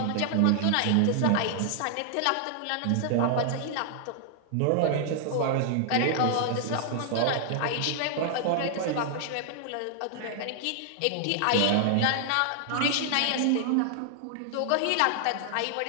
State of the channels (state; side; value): different; both; correlation 0.00